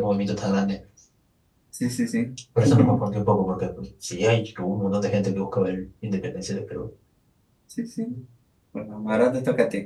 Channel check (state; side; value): identical; both; correlation 1.00